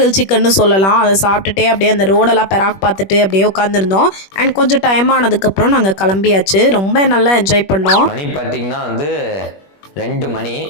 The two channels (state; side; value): late; right; 21 ms